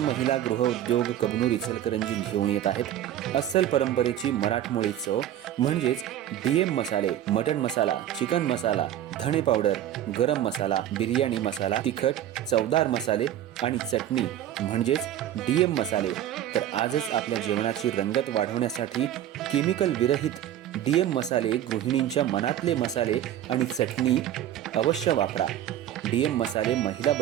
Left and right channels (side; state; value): left; quieter; 11.6 dB